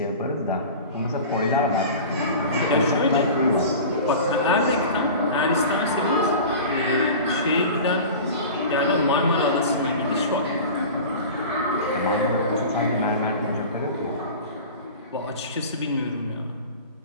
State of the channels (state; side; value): inverted; both; correlation -0.35